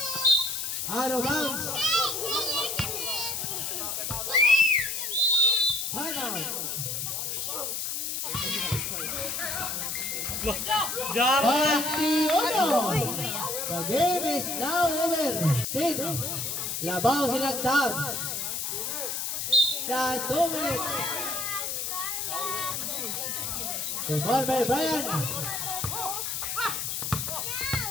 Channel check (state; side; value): noise; left; hiss, 2 dB below the sound